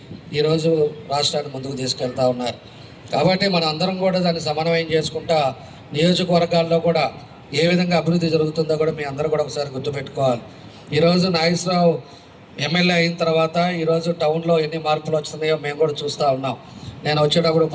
ఈరోజు రాష్ట్రాన్ని ముందుకు తీసుకెళ్తా ఉన్నారు. కాబట్టి మన అందరం కూడా దాన్ని సమన్వయం చేసుకుంటా నియోజకవర్గాల్లో కూడా ఏ విధంగా అభివృద్ధి జరుగుతుందో కూడా మీ అందరూ కూడా ఒకసారి గుర్తుపెట్టుకోవాలి. ఈరోజు నాగేశ్వరరావు ఎమ్మెల్యే అయిన తర్వాత ఈరోజు టౌన్లో ఎన్ని మార్పులు వస్తున్నాయో మేము కూడా చూస్తూ ఉన్నాం. నేను వచ్చేటప్పుడు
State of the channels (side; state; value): both; identical; correlation 1.00